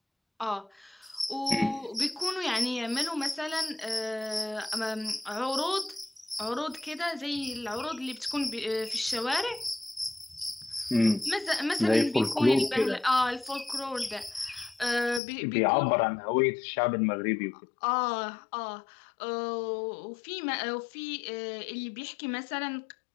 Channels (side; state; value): right; drops out; at 15.2 s